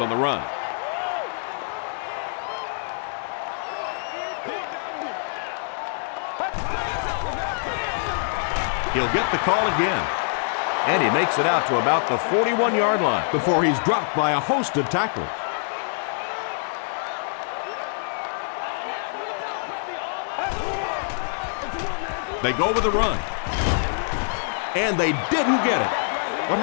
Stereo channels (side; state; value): right; silent; digital silence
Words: the run. He'll get the call again. And he makes it out to about the 41-yard line before he's dropped by a host of tackles. They go with a run. And they didn't get it. What